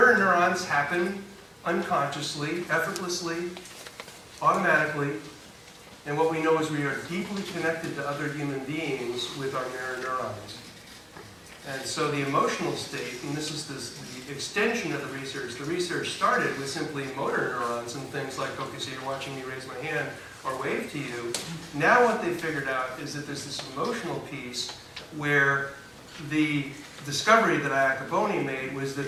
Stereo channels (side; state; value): both; identical; correlation 1.00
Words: neurons happen unconsciously, effortlessly, automatically, and what we know is we are deeply connected to other human beings with our mirror neurons. And so the emotional state, and this is the extension of the research started with simply motor neurons and things like, okay, so you're watching me raise my hand or wave to you. Now what they figured out is that there's this emotional piece where the discovery that Iacoboni made was